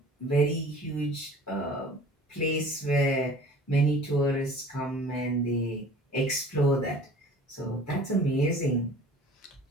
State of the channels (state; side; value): normal; both; correlation 0.46